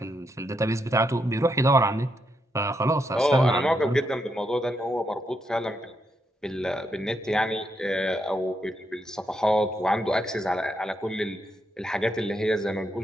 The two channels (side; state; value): both; normal; correlation 0.80